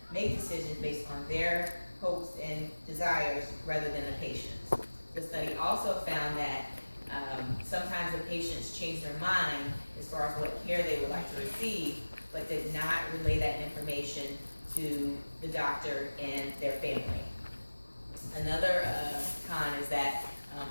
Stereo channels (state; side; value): inverted; both; correlation -1.00